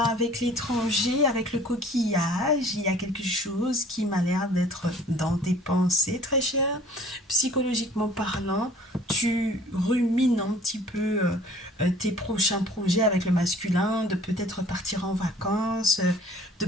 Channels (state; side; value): normal; both; correlation 0.52